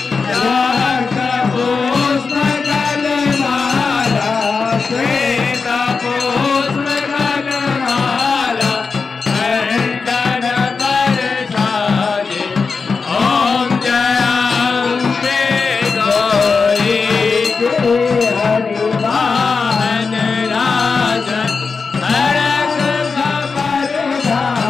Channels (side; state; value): right; quieter; 4.8 dB